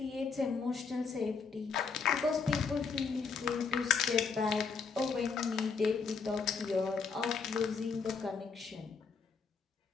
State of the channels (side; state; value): right; quieter; 5.3 dB